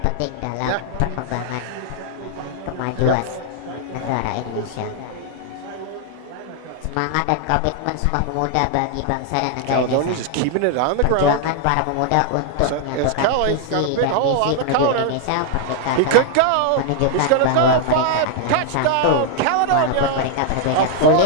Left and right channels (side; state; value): both; different; correlation 0.00